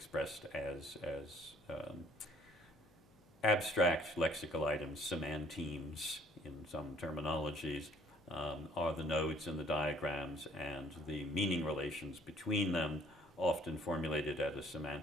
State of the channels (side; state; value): left; noise; hum, 28 dB below the sound